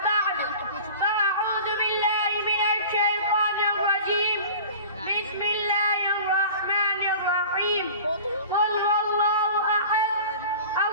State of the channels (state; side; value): inverted; both; correlation -0.40